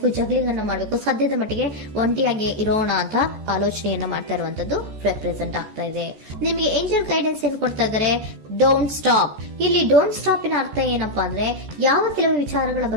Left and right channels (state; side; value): late; left; 14 ms